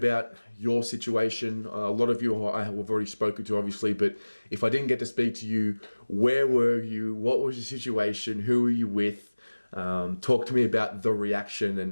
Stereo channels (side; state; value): both; inverted; correlation -1.00